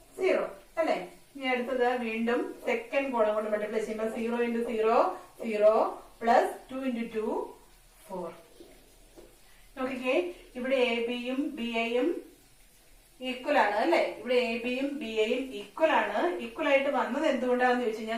0 അല്ലെ? ഇനി അടുത്തത് വീണ്ടും സെക്കൻഡ് കോളം കൊണ്ട് മൾട്ടിപ്ലൈ ചെയ്യുമ്പോൾ 0 into 0, 0 plus 2 into 2, 4. നോക്കിക്കേ, ഇവിടെ എ ബിയും ബി എയും ഈക്വൽ ആണ് അല്ലെ? ഇവിടെ എ ബിയും ബി എയും ഈക്വൽ ആണ്. ഈക്വൽ ആയിട്ട് വന്നത് എന്തുകൊണ്ടാണെന്ന് ചോദിച്ചു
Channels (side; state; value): both; identical; correlation 1.00